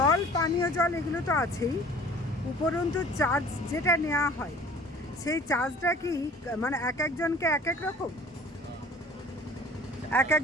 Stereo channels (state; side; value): normal; both; correlation 0.48